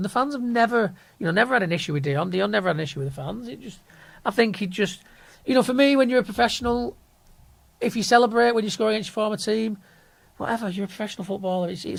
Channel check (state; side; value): identical; both; correlation 1.00